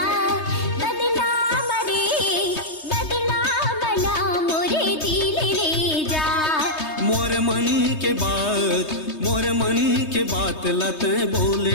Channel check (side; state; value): right; late; 3.2 ms